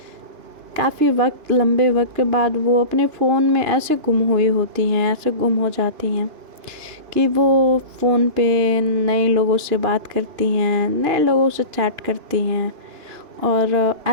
काफ़ी वक्त, लंबे वक्त के बाद वो अपने फ़ोन में ऐसे गुम हुई होती हैं, ऐसे गुम हो जाती हैं कि वो फ़ोन पे नए लोगों से बात करती हैं, नए लोगों से चैट करती हैं। और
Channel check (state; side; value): late; left; 2.9 ms